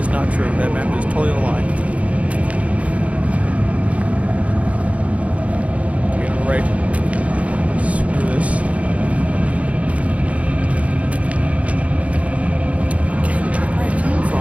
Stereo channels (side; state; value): left; late; 0.066 ms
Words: not true. That map is totally a lie. Okay, on the right. Screw this.